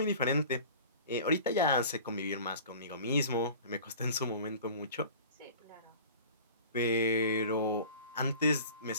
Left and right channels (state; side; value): inverted; both; correlation -0.42